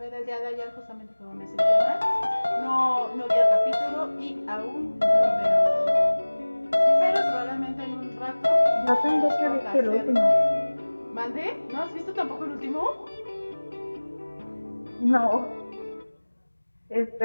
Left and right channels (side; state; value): both; inverted; correlation -1.00